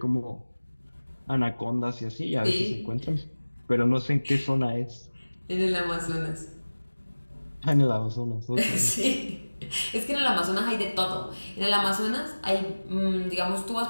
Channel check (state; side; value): inverted; both; correlation -1.00